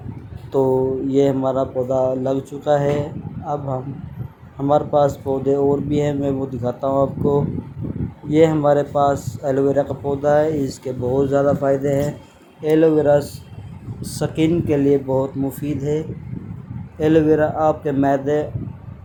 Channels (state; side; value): identical; both; correlation 1.00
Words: تو یہ ہمارا پودا لگ چکا ہے۔ اب ہمارے پاس پودے اور بھی ہیں، میں وہ دکھاتا ہوں آپ کو۔ یہ ہمارے پاس ایلو ویرا کا پودا ہے، اس کے بہت زیادہ فائدے ہیں۔ ایلو ویرا سکن کے لیے بہت مفید ہے۔ ایلو ویرا آپ کے معدے